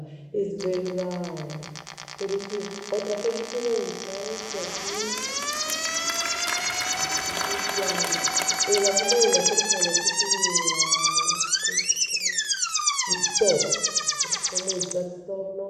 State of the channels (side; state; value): both; identical; correlation 1.00